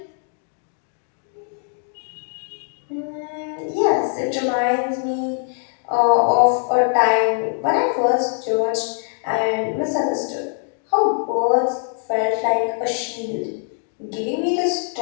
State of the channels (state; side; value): silent; right; 56 dB below the other